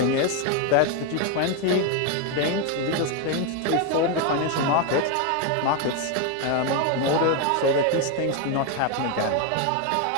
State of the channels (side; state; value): both; different; correlation 0.01